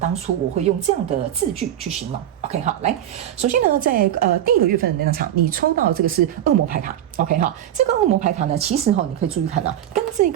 初我会用这样的字句去形容。OK 好，来，首先呢，在第一个月份的能量场，你抽到这个是恶魔牌卡。OK 好，这个恶魔牌卡呢，其实你可以注意看到，跟这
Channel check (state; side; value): quieter; left; 11.4 dB